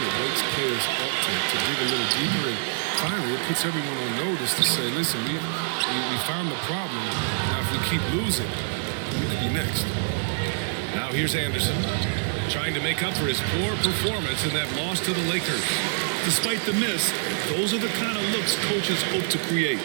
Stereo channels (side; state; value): left; silent; digital silence